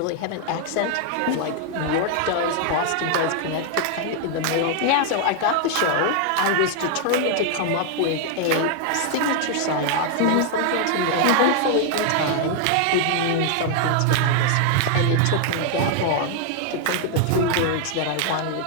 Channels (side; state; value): both; different; correlation 0.00